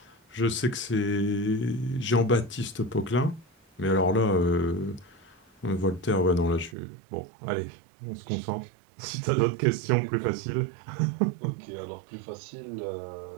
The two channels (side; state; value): left; drops out; at 6.8 s